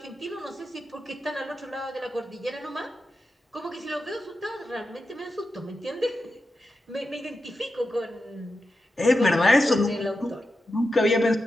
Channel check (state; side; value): normal; both; correlation 0.89